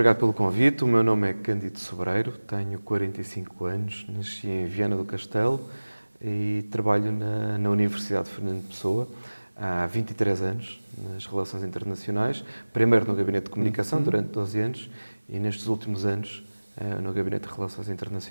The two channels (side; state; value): both; inverted; correlation -1.00